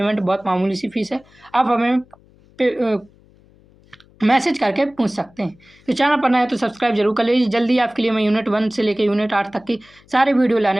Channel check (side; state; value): left; noise; hum, 29 dB below the sound